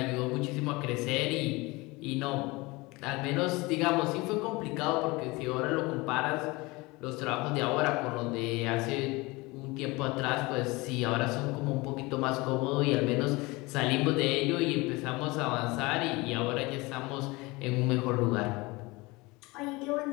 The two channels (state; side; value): quieter; right; 23.5 dB